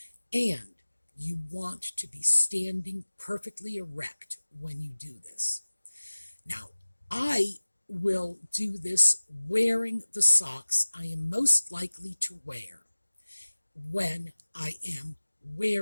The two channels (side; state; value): both; inverted; correlation -1.00